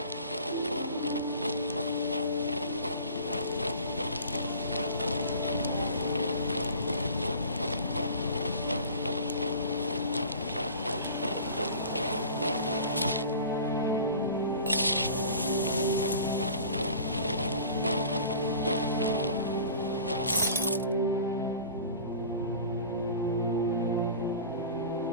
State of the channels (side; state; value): both; inverted; correlation -0.41